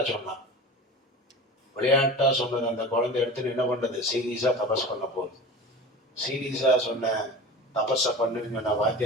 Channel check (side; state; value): both; normal; correlation 0.34